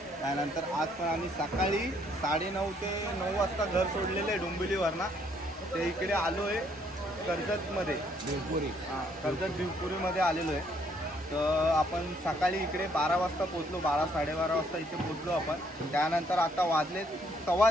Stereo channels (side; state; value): both; normal; correlation 0.68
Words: त्यानंतर आज पण आम्ही सकाळी 9:30 ते 9 वाजता घर सोडलेलं आहे डोंबिवलीवरनं. ते इकडे आलो आहे कर्जतमध्ये भिवपुरी. हां, कर्जत भिवपुरीमध्ये आलेलो आहे. तर आपण सकाळी इकडे 12 वाजता पोचलो. 12-12:30 वाजता इथे पोचलो आपण. त्यानंतर आता वाजले